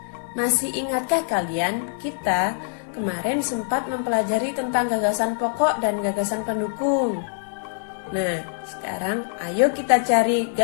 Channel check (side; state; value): right; silent; 63 dB below the other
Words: Masih ingatkah kalian kita kemarin sempat mempelajari tentang gagasan pokok dan gagasan pendukung. Nah, sekarang ayo kita cari